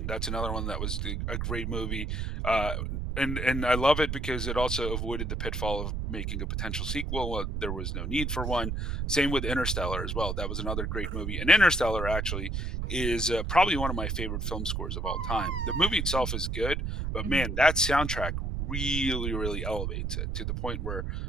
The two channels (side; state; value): right; noise; rumble, 2 dB below the sound